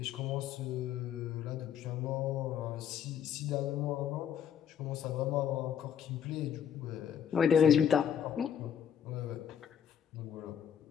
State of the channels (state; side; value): quieter; right; 8.6 dB